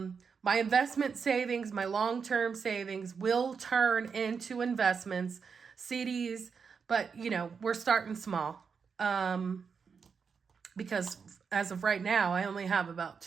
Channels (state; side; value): quieter; left; 5.9 dB